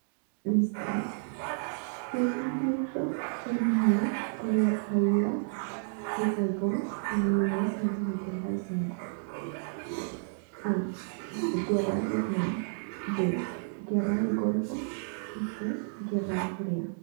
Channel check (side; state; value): left; silent; digital silence